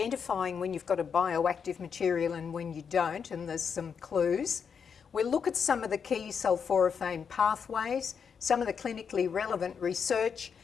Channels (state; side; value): quieter; right; 6.6 dB